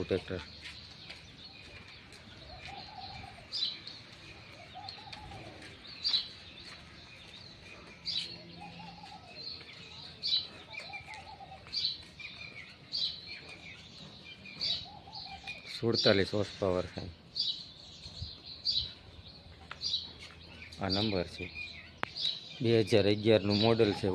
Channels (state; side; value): identical; both; correlation 1.00